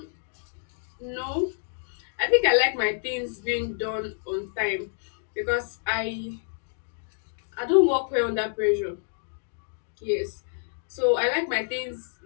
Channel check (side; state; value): right; silent; digital silence